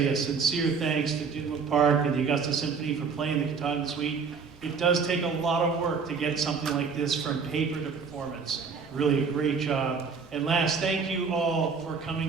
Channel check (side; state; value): left; quieter; 5.5 dB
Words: a sincere thanks to Dinwood Park and the Augusta Symphony for playing the Katahdin Suite. It does take a lot of work to get something like this from paper to performance. Really a great job. And last, thank you all for